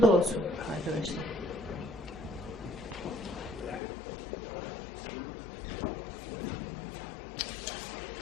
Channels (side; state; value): right; drops out; at 3.8 s